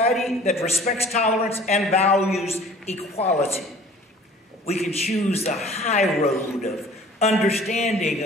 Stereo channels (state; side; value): normal; both; correlation 0.49